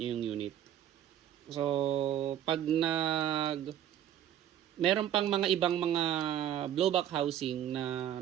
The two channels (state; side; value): quieter; left; 10.9 dB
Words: yung unit. So, pag meron pang mga ibang mga blowback housing na